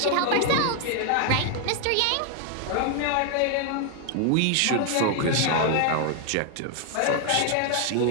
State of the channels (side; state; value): both; different; correlation 0.00